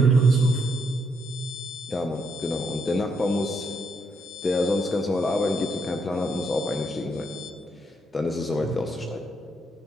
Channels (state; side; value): normal; both; correlation 0.76